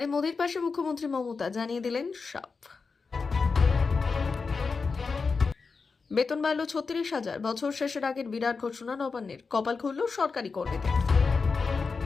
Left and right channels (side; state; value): right; quieter; 4.7 dB